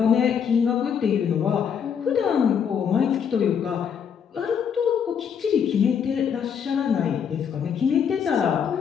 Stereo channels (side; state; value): right; quieter; 7.5 dB